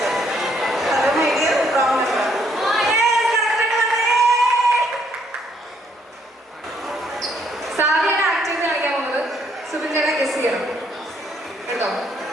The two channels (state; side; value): normal; both; correlation 0.69